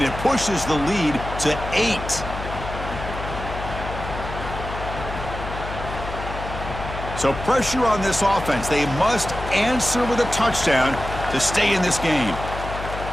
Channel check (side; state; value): left; noise; hum, 8 dB below the sound